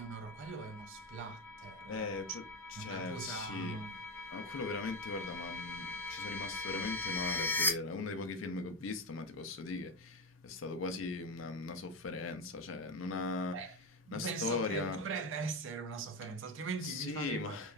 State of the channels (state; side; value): normal; both; correlation 0.15